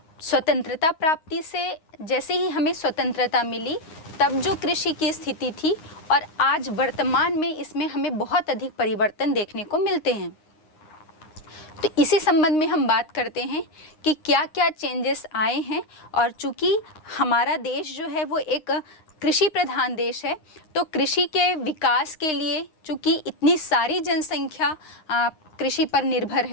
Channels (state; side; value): late; right; 9.7 ms